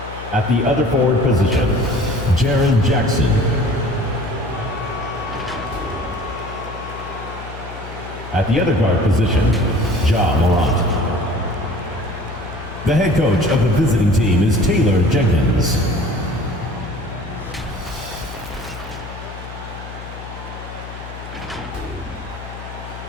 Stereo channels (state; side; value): noise; left; hum, 12 dB below the sound